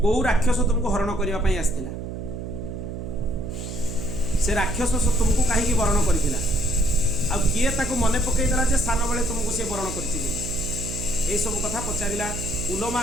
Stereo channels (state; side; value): noise; right; hum, 7 dB below the sound